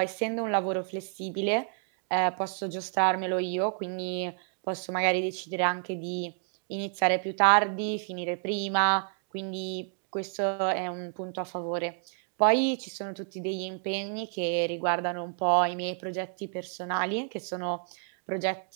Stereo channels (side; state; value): left; silent; 58 dB below the other